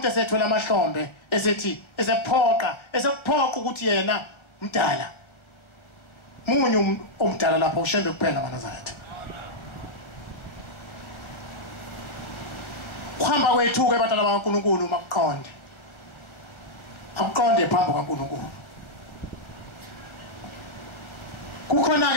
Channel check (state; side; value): late; right; 1.4 ms